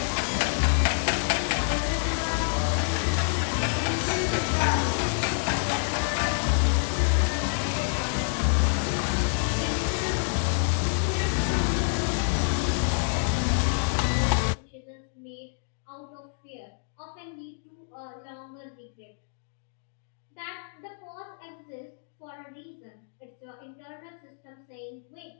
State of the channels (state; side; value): silent; right; digital silence